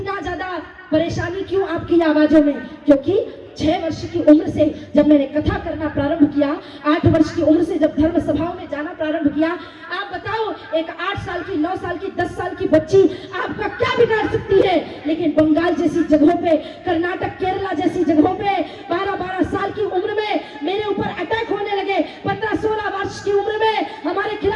ज्यादा परेशानी क्यों आपकी आवाजों में? क्योंकि 6 वर्ष की उम्र से जब मैंने कथा करना प्रारंभ किया, 8 वर्ष की उम्र से जब धर्म सभाओं में जाना प्रारंभ किया, आप बताओ एक 8 साल की, 9 साल की, 10 साल की बच्ची आपका क्या बिगाड़ सकती है? लेकिन बंगाल जैसी जगहों पे, कर्नाटक, केरला जैसी जगहों पे 12-12 साल की उम्र में मेरे ऊपर अटैक होने लगे। 15-16 वर्ष की उम्र में हमारे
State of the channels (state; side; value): identical; both; correlation 1.00